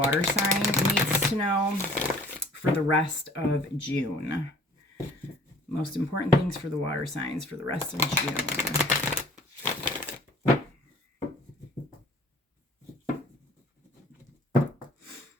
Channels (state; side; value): normal; both; correlation 0.52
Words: sign needs to know for the rest of June? Most important things for the water signs for the rest of June.